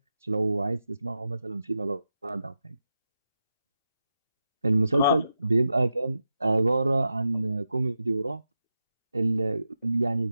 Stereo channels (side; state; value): both; inverted; correlation -0.88